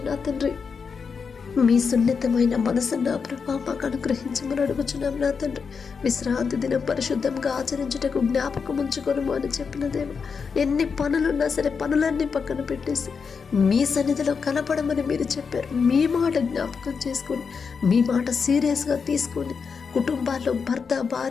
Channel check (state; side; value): quieter; right; 5.7 dB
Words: నా తండ్రి. మీ సున్నితమైన మనసు నా ప్రభా మాకు అనుగ్రహించమని అడుగుచున్నాం నా తండ్రి. విశ్రాంతి దినం పరిశుద్ధంగా ఆచరించుటకు జ్ఞాపకం ఉంచుకొనుము అని చెప్పిన దేవ, ఎన్ని పనులున్నా సరే పనులన్నీ పక్కన పెట్టేసి మీ సన్నిధిలో కనపడమని మీరు చెప్పారు. మీ మాట జ్ఞాపకం చేసుకొని, మీ మాట సీరియస్గా తీసుకొని కుటుంబాల్లో భర్త,